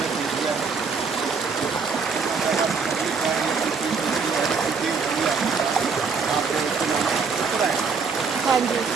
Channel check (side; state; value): left; quieter; 5.1 dB